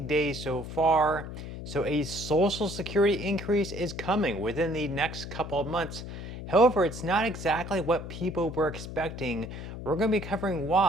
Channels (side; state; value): left; noise; hum, 9 dB below the sound